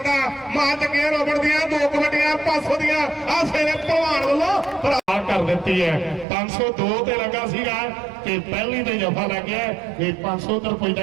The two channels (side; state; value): left; drops out; at 6.2 s